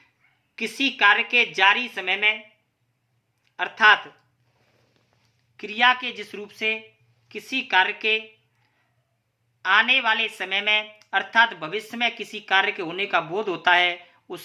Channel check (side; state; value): both; identical; correlation 1.00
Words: किसी कार्य के जारी समय में अर्थात क्रिया के जिस रूप से किसी कार्य के आने वाले समय में अर्थात भविष्य में किसी कार्य के होने का बोध होता है